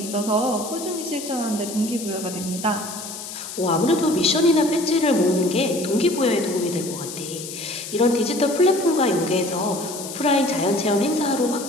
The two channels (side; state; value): left; noise; hiss, 10 dB below the sound